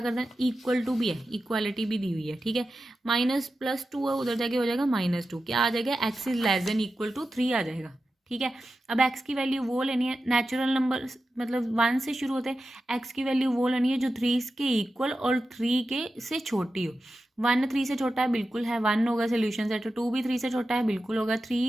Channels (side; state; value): both; normal; correlation 0.92